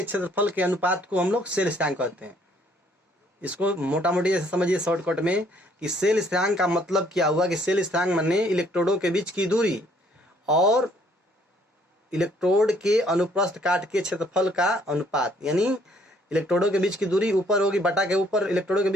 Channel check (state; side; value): normal; both; correlation 0.64